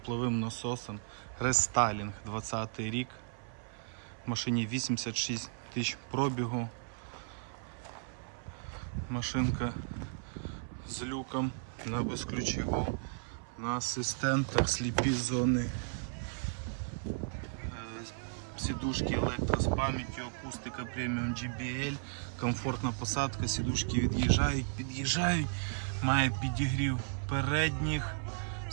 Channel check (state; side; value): silent; left; 54 dB below the other